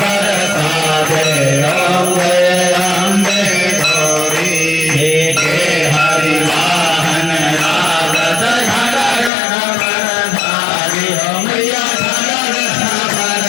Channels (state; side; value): drops out; right; at 9.3 s